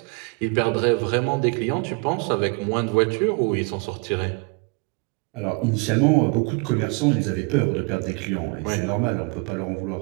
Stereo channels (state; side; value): quieter; left; 30.5 dB